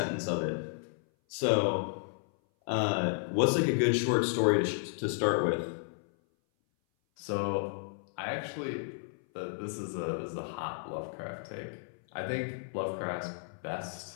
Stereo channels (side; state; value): right; silent; 56 dB below the other